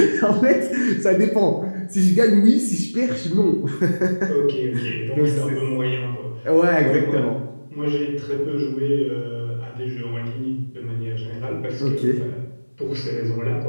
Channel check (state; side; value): inverted; both; correlation -1.00